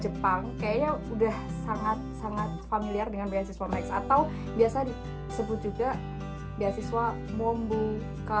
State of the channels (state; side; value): identical; both; correlation 1.00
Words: kayaknya udah sangat familiar dengan beasiswa Max, atau biasa disebut juga beasiswa